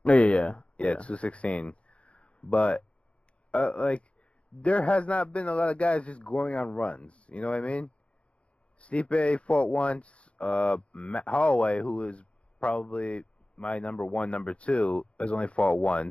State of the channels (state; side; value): late; right; 0.060 ms